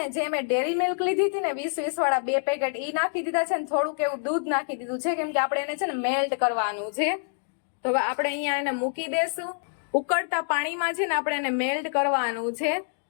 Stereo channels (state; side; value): silent; right; digital silence